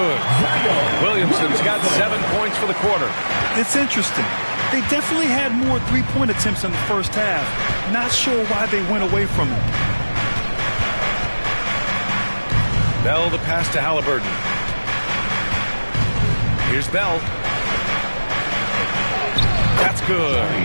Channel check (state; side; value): inverted; both; correlation -1.00